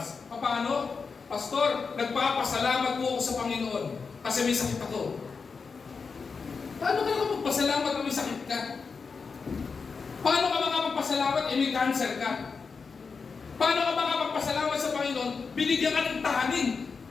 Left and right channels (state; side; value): quieter; right; 5.1 dB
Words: Paano? Pastor, nagpapasalamat po ako sa Panginoon kasi may sakit ako. Paano ka naman magpasalamat kung may sakit ka? Paano ka makapagpasalamat may cancer ka? Paano ka makapagpasalamat sa Panginoon? Binigyan ka ng tahanin.